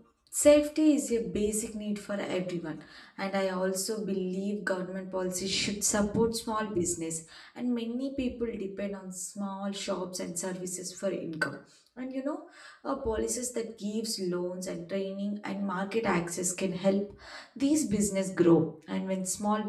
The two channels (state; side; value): identical; both; correlation 1.00